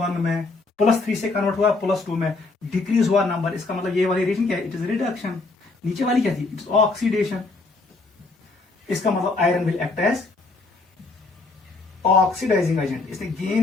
में, +3 से कन्वर्ट हुआ +2 में, डिक्रीज हुआ नंबर, इसका मतलब ये वाली रिएक्शन क्या है, इट इज रिडक्शन। नीचे वाली क्या थी, इट्स ऑक्सीडेशन। इसका मतलब iron will act as oxidising agent, इसने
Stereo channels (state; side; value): quieter; right; 3.5 dB